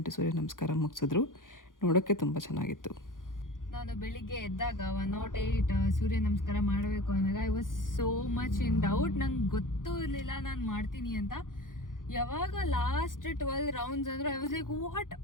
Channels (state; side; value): late; right; 0.89 ms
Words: ಸೂರ್ಯ ನಮಸ್ಕಾರ ಮುಗಿಸಿದ್ರು. ನೋಡೋಕ್ಕೆ ತುಂಬ ಚೆನ್ನಾಗಿತ್ತು. ನಾನು ಬೆಳಿಗ್ಗೆ ಎದ್ದಾಗ 108 ಸೂರ್ಯ ನಮಸ್ಕಾರ ಮಾಡಬೇಕು ಅಂದಾಗ I was so much in doubt. ನಂಗೆ ಗೊತ್ತೂ ಇರಲಿಲ್ಲ ನಾನು ಮಾಡ್ತೀನಿ ಅಂತ. ಯಾವಾಗ ಲಾಸ್ಟ್ 12 ರೌಂಡ್ಸ್ ಅಂದ್ರೆ ಐ ವಾಸ್ ಲೈಕ್ ವಾಟ್,